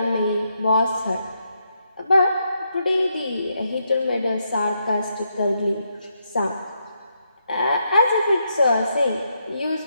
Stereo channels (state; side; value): inverted; both; correlation -0.80